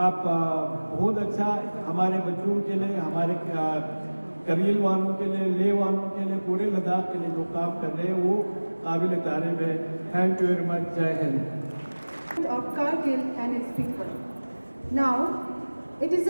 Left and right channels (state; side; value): inverted; both; correlation -1.00